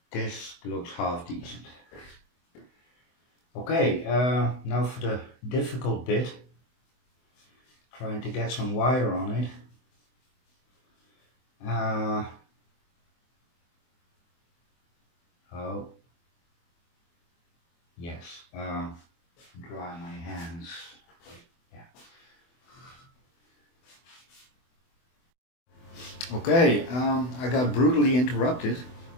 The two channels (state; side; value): late; right; 24 ms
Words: this looks half decent. Okay, now for the difficult bit. Trying to get some wire on it. Oh, yes, dry my hands. Yeah. Okay, I got brutally interrupted.